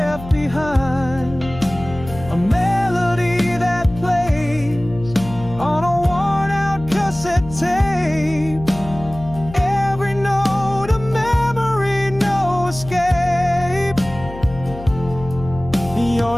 behind, a melody that plays on a worn out cassette tape, every note a memory, no escape.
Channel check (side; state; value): left; noise; hum, 13 dB below the sound